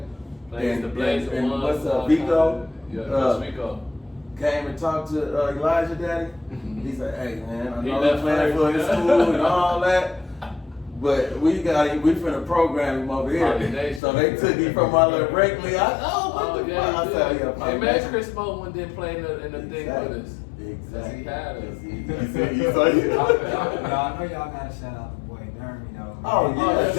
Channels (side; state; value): right; drops out; at 14.0 s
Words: Plays the Blaze and ones, what's all Vico? kinds of- Yeah, Uh, Coach Vico. came and talked to Elijah Daddy. He said, "Hey man, I He know left he's playing for his first. school and all that, but we finna program him over here." Pollination. So they took him from my little rec league. What the fuck? I said, "Yeah, Hey, man, pollination." Chris Moon didn't play in the thing with us. Exactly. He had us. Y'all know y'all gotta shout out the boy Dermy though. Oh,